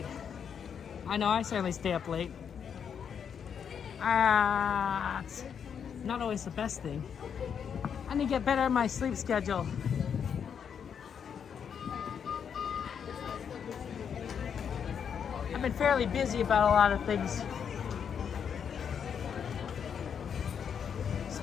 I know, I certainly stay up late. It's not always the best thing. I need to get better at my sleep schedule. I've been fairly busy about a lot of things.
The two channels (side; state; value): right; quieter; 7.5 dB